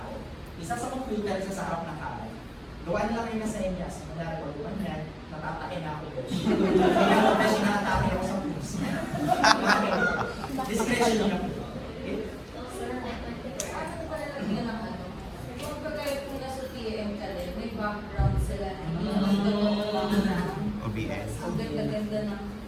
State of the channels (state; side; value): identical; both; correlation 1.00